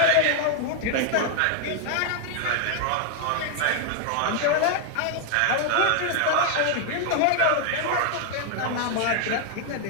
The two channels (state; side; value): different; both; correlation 0.00